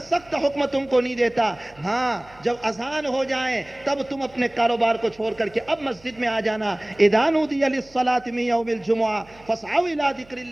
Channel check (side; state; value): right; noise; hum, 26 dB below the sound